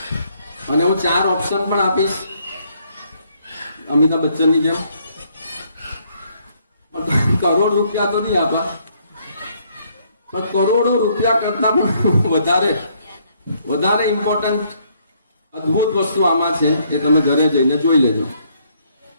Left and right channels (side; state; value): both; inverted; correlation -0.69